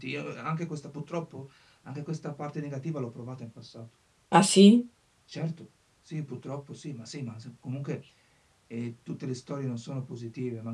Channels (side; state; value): both; identical; correlation 1.00